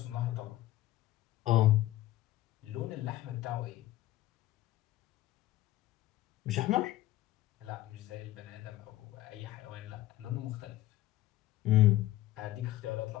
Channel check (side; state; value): right; quieter; 15.6 dB